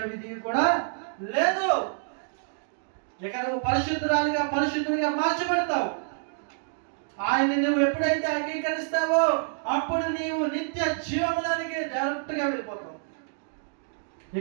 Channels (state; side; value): silent; left; digital silence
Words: విధి కూడా లేదు. ఇక నువ్వు పరిశుద్ధుడిగా మార్చబడతావు. ఆయన నువ్వు ఎప్పుడైతే అంగీకరిస్తావో అప్పుడు నీవు నిత్య జీవములోనికి డైరెక్ట్గా వెళ్ళిపోతావు.